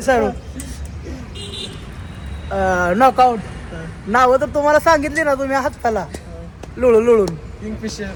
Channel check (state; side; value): identical; both; correlation 1.00